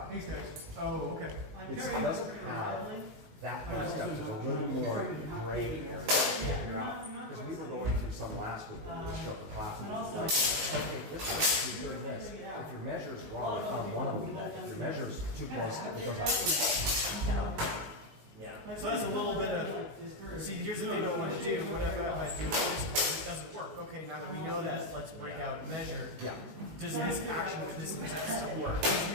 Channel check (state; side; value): late; left; 19 ms